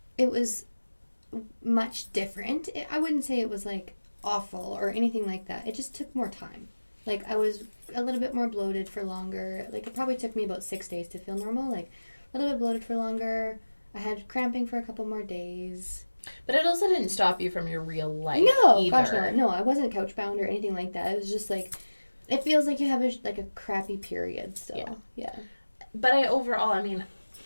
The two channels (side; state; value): both; inverted; correlation -1.00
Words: It was much different. I wouldn't say it was awful or anything like that. It just took more time. I was a little bit more bloated for longer. It probably took me about 6 days to feel normal. A little bit bloated for longer. I had cramping for a couple more days. But it also didn't stop you from your real life. No, either. Gosh, no. No, I wasn't couch bound or anything like that. It was just it feels like you have a crappy period still. Yeah. But